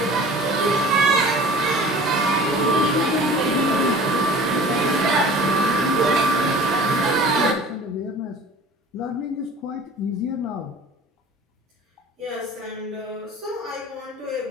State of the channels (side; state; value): both; normal; correlation 0.43